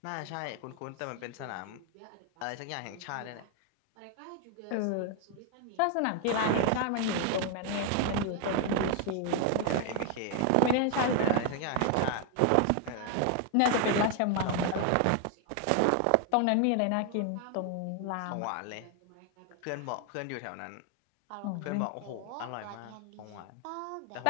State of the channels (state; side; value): different; both; correlation 0.01